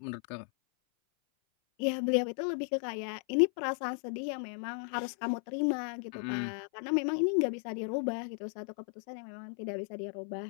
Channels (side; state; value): right; silent; 55 dB below the other